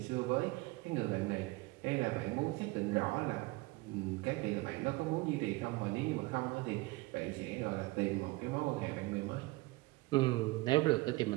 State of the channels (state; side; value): quieter; left; 22.3 dB